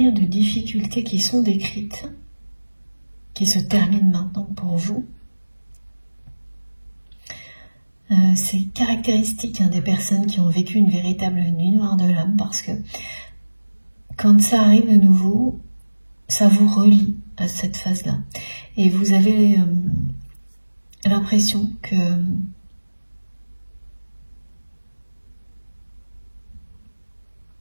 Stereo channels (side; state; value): both; inverted; correlation -1.00